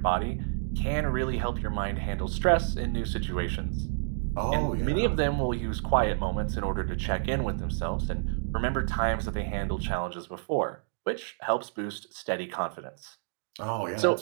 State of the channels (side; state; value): left; silent; digital silence